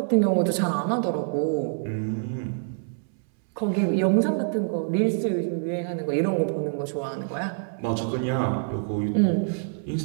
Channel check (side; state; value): left; silent; 61 dB below the other